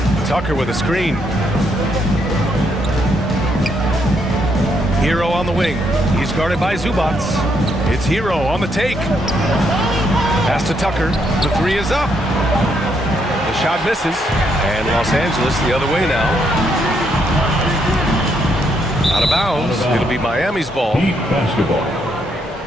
Tucker with a screen. Hero on the wing. He's guarded by Zubac. It's Hero on the take. Pass to Tucker. The 3 is up. The shot misses. And Los Angeles the other way now. Out of bounds. It'll be Miami's ball. eBasketball.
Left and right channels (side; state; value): both; normal; correlation 0.75